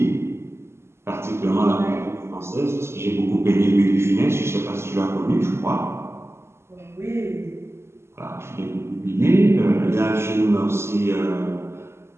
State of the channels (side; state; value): left; late; 0.12 ms